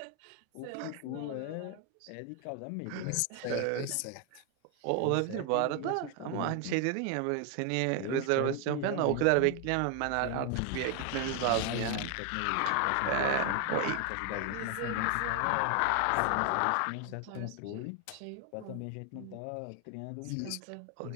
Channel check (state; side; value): different; both; correlation 0.01